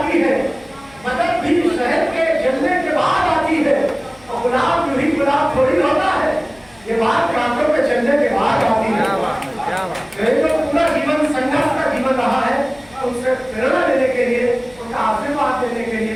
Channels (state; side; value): noise; left; hum, 27 dB below the sound